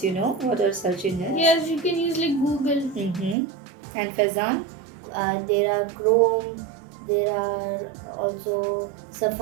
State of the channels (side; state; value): left; drops out; at 3.4 s